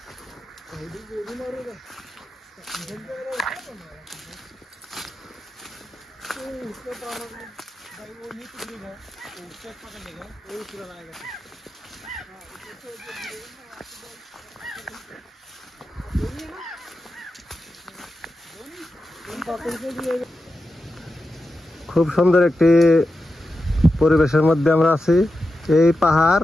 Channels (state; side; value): normal; both; correlation 0.90